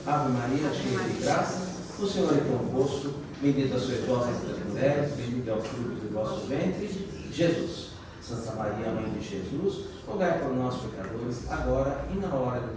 Ave Maria, cheia de graça, o Senhor é convosco, bendita sois vós entre as mulheres, bendito é o fruto do vosso ventre, Jesus. Santa Maria, Mãe de Jesus, rogai por nós, pecadores, agora e na hora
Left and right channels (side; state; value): both; identical; correlation 1.00